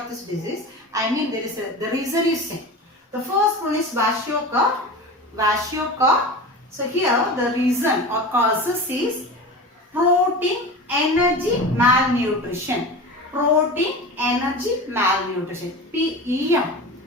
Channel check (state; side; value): normal; both; correlation 0.31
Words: this disease. I mean there is the reason is same. The first one is kwashiorkor. So here the reason or causes is protein energy malnutrition. Protein energy malnutrition. PEM.